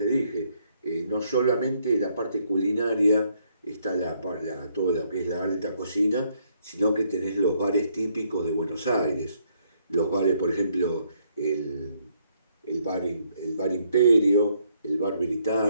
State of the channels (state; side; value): inverted; both; correlation -0.71